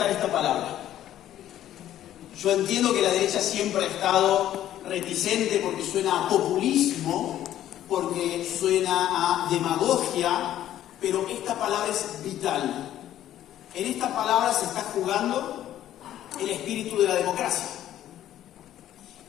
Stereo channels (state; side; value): quieter; right; 12.2 dB